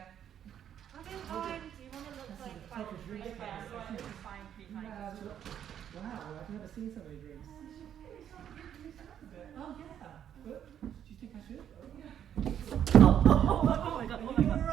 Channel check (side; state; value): left; quieter; 9.6 dB